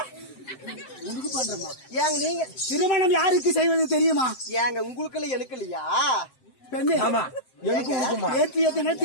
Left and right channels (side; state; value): right; late; 7.7 ms